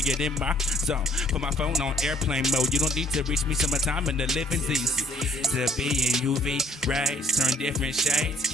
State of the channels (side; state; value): both; normal; correlation 0.62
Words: get in my zone. Put my phone on airplane mode. You don't need to reach me summertime in the living's easy. To be in UV rays, turn different shades.